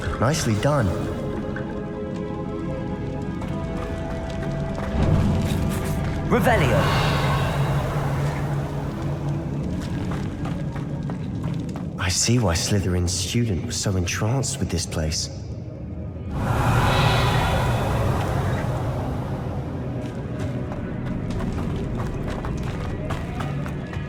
Nicely done. Revelio. I see why Slytherin's student was so entranced with this place.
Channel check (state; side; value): identical; both; correlation 1.00